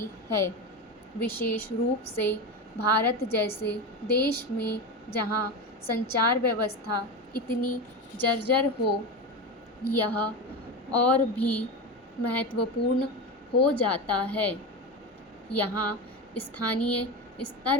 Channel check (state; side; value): normal; both; correlation 0.20